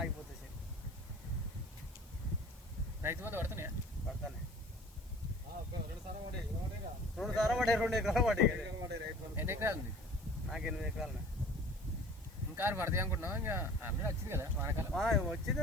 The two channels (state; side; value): noise; right; hiss, 28 dB below the sound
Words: రైతు మంది పడుతున్నాయా? పడతానే 2 సార్లు పడ్డాయి. 2 ఎకరాలు పడ్డాయి. ఎన్ని ఎకరాలు ఉంది? నాకు 8 ఎకరాలు. ఇంకా పడతాయి అనుకుంటున్నావు? ఇంకా అన్నీ వచ్చింది కదా వానకాలం. వచ్చింది